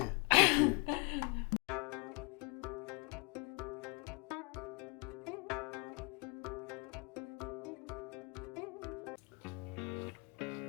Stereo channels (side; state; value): right; quieter; 30.5 dB